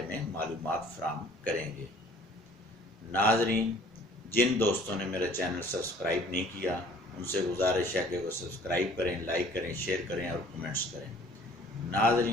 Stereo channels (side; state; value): both; normal; correlation 0.53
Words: में मालूमात फराहम करेंगे। नाज़रीन, जिन दोस्तों ने मेरा चैनल सब्सक्राइब नहीं किया उनसे गुजारिश है कि वो सब्सक्राइब करें, लाइक करें, शेयर करें और कमेंट्स करें।